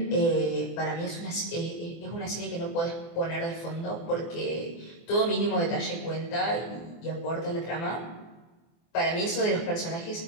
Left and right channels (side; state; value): right; late; 24 ms